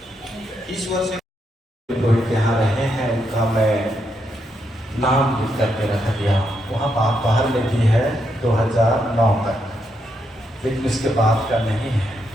ईश्वर से रोहित यहाँ रहे हैं, उनका मैं नाम लिख करके रख दिया। वहाँ बाहर में भी है 2009 तक, लेकिन इसके बाद का नहीं है।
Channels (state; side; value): normal; both; correlation 0.80